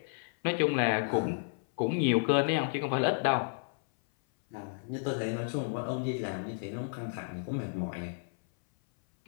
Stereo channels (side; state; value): right; silent; 56 dB below the other